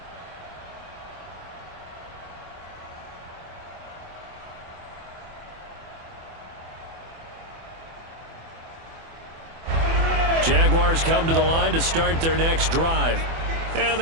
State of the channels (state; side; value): late; left; 24 ms